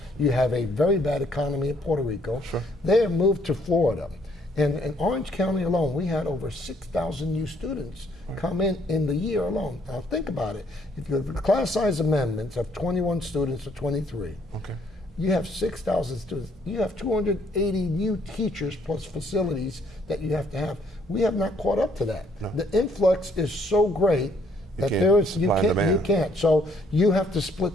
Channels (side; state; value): both; normal; correlation 0.66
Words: you have a very bad economy in Puerto Rico, they have moved to Florida. And in Orange County alone, we had over 6,000 new students come in the year alone. Now think about it. If you have the class size amendments of 21 students to 23, you have 6,000 students. You have 280 new teachers plus facilities that you have to have. We have not caught up to that. No. The influx is so great that you can't. So you have to